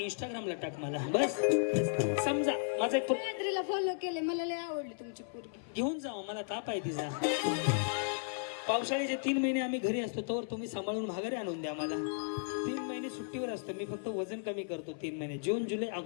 इंस्टाग्रामला टाक मला बस. समजा माझा एक गायत्रीला फॉलो केलंय, मला लय आवडली तुमची पोरगी. घेऊन जाऊ, मला ताप आहे तिचा. पावसाळ्याचे 3 महिने आम्ही घरी असतो तोवर तुम्ही सांभाळून माघारी आणून द्या मला. 3 महिने सुट्टीवर असतो मी, फक्त वजन कमी करतो 3 महिने, जून जुलै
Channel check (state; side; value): silent; right; 55 dB below the other